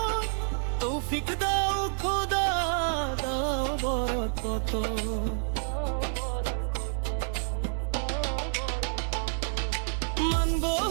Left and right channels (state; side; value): silent; left; digital silence